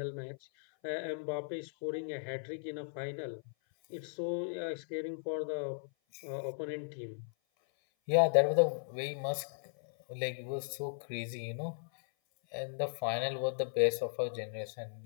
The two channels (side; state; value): right; silent; 53 dB below the other